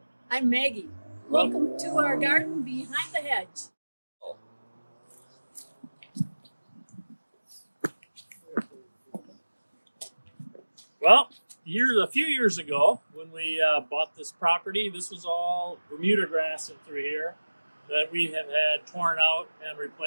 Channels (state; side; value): inverted; both; correlation -1.00